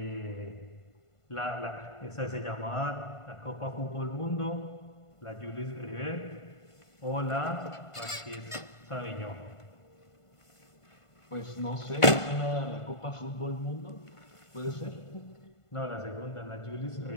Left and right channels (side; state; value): right; late; 1.5 ms